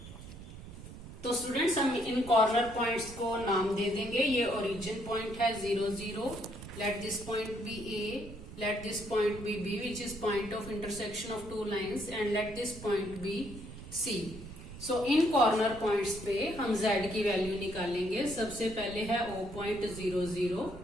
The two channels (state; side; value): noise; right; rumble, 14 dB below the sound